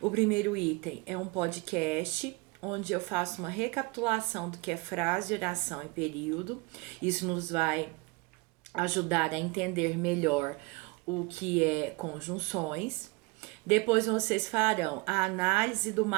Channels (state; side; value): quieter; left; 25.5 dB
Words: O primeiro item é um podcast, onde eu faço uma recapitulação do que é frase, oração e período. Isso nos vai ajudar a entender melhor o que é conjunções. Depois vocês farão a análise do